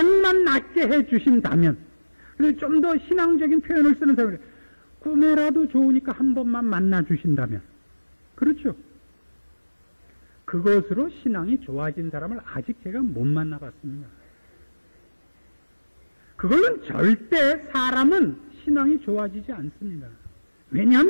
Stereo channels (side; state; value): both; inverted; correlation -1.00